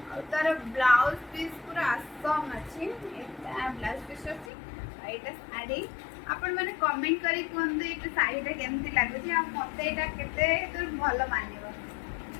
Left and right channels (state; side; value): drops out; right; at 4.5 s